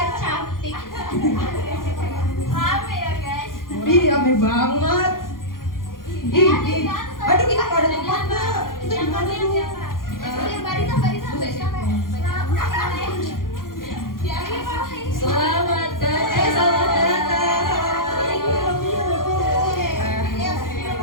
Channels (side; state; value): right; late; 0.91 ms